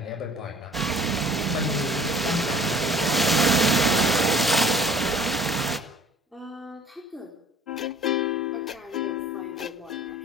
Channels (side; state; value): both; normal; correlation 0.51